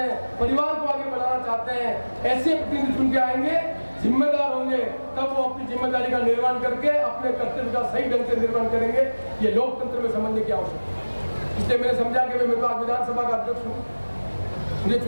परिवार को आगे बढ़ाना चाहते हैं। ऐसे प्रतिनिधि चुन के आएंगे, जिम्मेदार होंगे, तब वो अपनी जिम्मेदारी का निर्वहन करके अपने कर्तव्य का सही ढंग से निर्वहन करेंगे। ये लोकतंत्र में समझने की आवश्यकता है। इसलिए मैंने समझा कि मैं तो आज विधानसभा का अध्यक्ष हूँ, मुझे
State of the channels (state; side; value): inverted; both; correlation -1.00